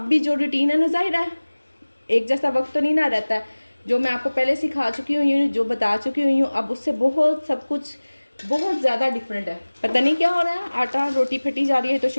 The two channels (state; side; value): inverted; both; correlation -1.00